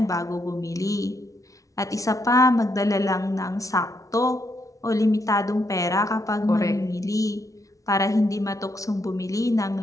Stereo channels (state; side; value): late; right; 0.16 ms